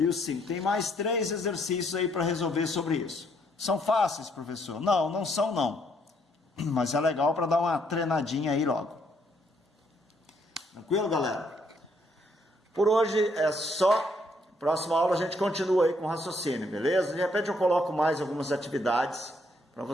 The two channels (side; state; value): both; normal; correlation 0.70